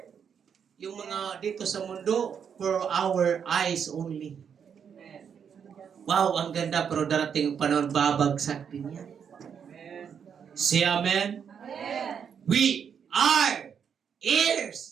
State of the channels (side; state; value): left; quieter; 7.4 dB